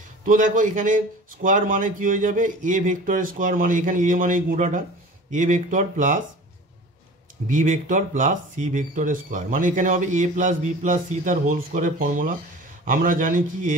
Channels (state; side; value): normal; both; correlation 0.40